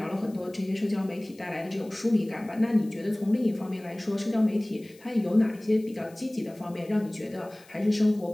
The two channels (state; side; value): noise; left; hiss, 26 dB below the sound